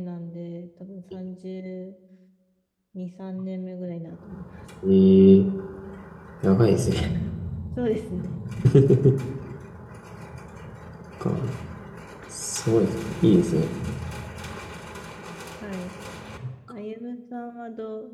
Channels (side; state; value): both; identical; correlation 1.00